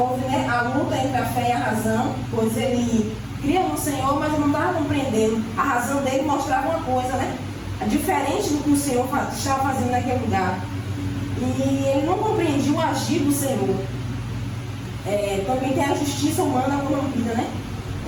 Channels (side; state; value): both; identical; correlation 1.00